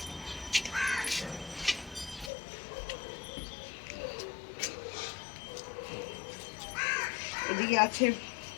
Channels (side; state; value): right; drops out; at 2.3 s